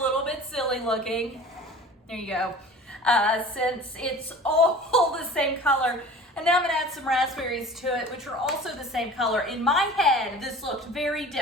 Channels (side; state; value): both; normal; correlation 0.42